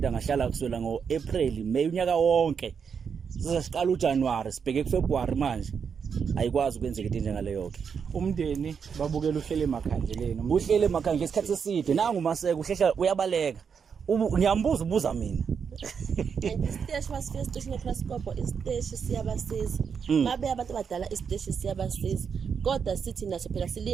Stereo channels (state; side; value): quieter; left; 6.6 dB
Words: angahlala kuswela ngoApril May unyaka wonke sizasiqala uJanuary sibheke kuFebruary manje ayikwazi ukwenzeka into njengaleyo ke umndeni babukela uhlele emakhanjeleni uhlele emakhanjeleni isikhathi eside nangu Maseko uhlehla uyabaleka ngiyambuza ubuza mina isiteshi wasifika isiteshi neCrascope isiteshi siyabasiza babe abantu abadala isiteshi siyabasiza kodwa sithi naso phela